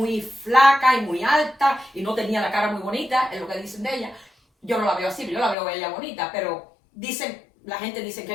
flaca y muy alta y no tenía la cara muy bonita, es lo que dicen de ella. Yo no la veo así, yo la veo a ella bonita, pero la gente dice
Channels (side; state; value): right; drops out; at 5.6 s